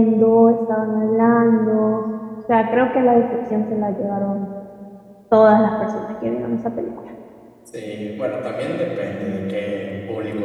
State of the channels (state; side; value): identical; both; correlation 1.00